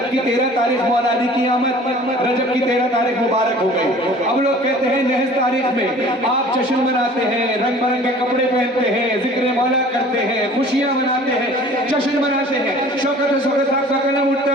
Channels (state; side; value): normal; both; correlation 0.48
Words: की 13 तारीख मौला अली की आमद, रजब की 13 तारीख मुबारक हो गई। अब लोग कहते हैं नहस तारीख में आप जश्न मनाते हैं, रंग बिरंगे कपड़े पहनते हैं, जिक्र मौला करते हैं, खुशियां मनाते हैं, जश्न मनाते हैं। शौकत साहब का कलम उठता